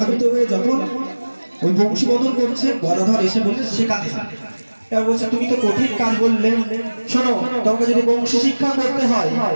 হয়ে যখন ওই বংশীবদল করছে, গদাধর এসে বলছে শেখাতে হবে। এবার বলছে তুমি তো কঠিন কাজ বললে, শোনো তোমাকে যদি বংশী শিক্ষা করতে হয়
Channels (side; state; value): both; inverted; correlation -1.00